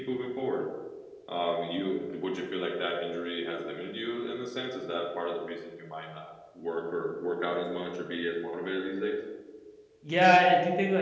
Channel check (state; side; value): identical; both; correlation 1.00